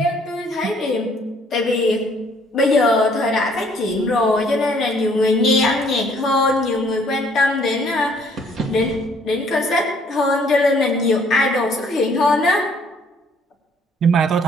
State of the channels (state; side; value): normal; both; correlation 0.61